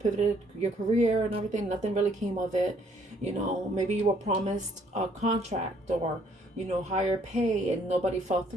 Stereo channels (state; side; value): normal; both; correlation 0.64